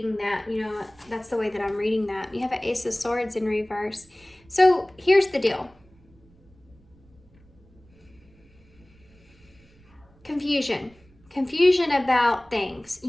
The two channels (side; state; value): right; noise; rumble, 29 dB below the sound